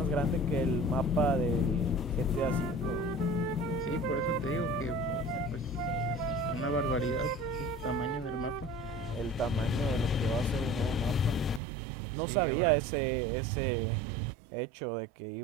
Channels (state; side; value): drops out; left; at 11.6 s